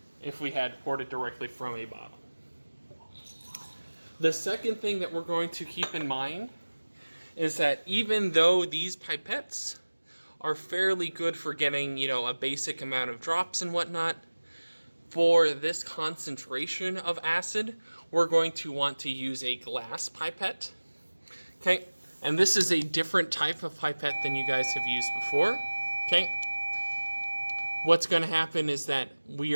if we had poured it directly from a bottle. The second thing that we're going to keep in mind is that even though these pipettes are fairly good for getting, a basic amount of drops and whatnot, for this concentration of acid, we're going to want to use a glass pipette. Okay, and this is a different type of pipette than you guys have used before. Okay, what's going to happen is that we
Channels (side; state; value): both; inverted; correlation -1.00